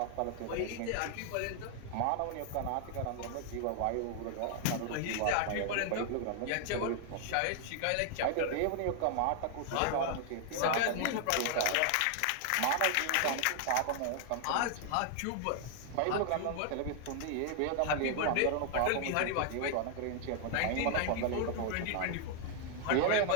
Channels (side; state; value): both; different; correlation 0.00